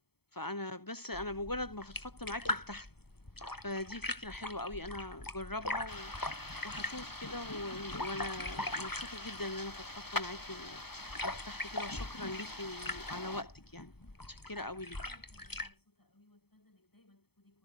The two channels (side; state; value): right; late; 0.97 ms